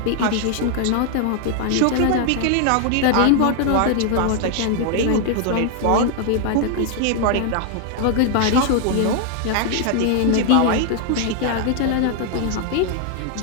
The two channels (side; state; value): both; different; correlation 0.00